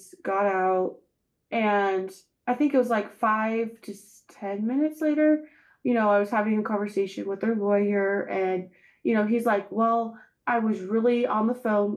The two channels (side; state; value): both; identical; correlation 1.00